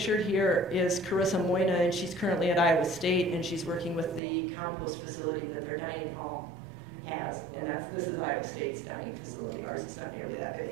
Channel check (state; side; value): drops out; left; at 4.2 s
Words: here is Carissa Moyna, and she's currently at Iowa State, and she's working with the compost facility that their dining hall has, and this is Iowa State's dining facility. Ours is not nearly that